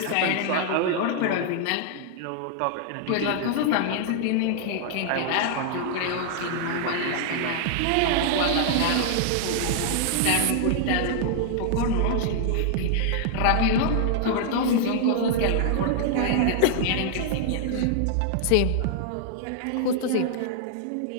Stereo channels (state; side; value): different; both; correlation -0.01